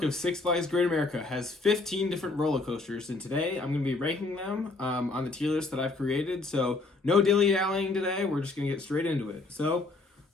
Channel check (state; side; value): quieter; right; 3.5 dB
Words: of Six Flags Great America has 15 different roller coasters, and today I'm going to be ranking them on the tier list that I've created. So, no dilly-dallying today. We're just going to get straight into it. So,